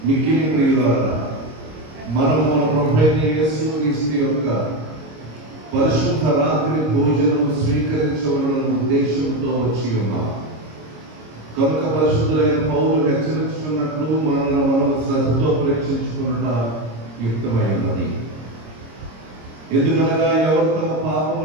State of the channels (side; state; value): left; late; 26 ms